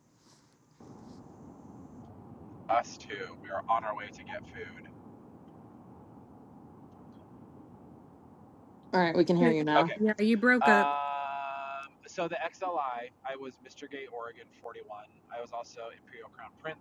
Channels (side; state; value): both; identical; correlation 1.00